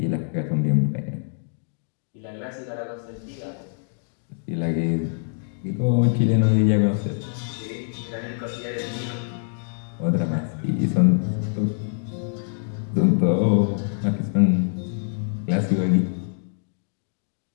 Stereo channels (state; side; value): silent; right; digital silence